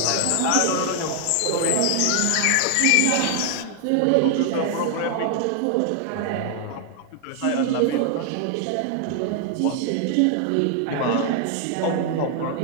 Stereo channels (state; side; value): different; both; correlation 0.00